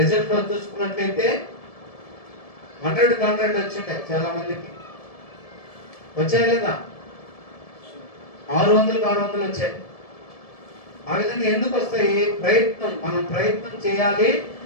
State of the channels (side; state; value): right; late; 1.7 ms